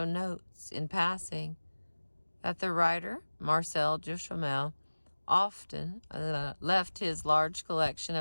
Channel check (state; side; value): inverted; both; correlation -1.00